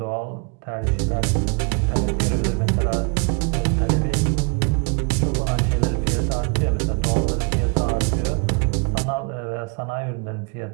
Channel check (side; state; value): left; quieter; 34.9 dB